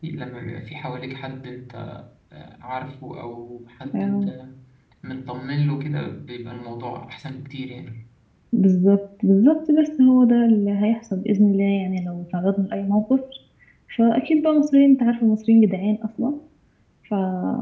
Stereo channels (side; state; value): both; identical; correlation 1.00